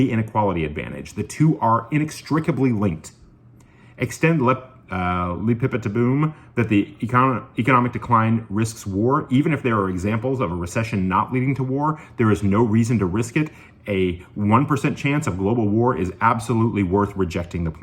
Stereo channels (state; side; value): identical; both; correlation 1.00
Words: inequality advantage. The two are inextricably linked. Extend boom that the economic decline risks war. Even if there are examples of a recession not leading to war, there is no reason to risk it. A 1% chance of global war is absolutely worth rejecting the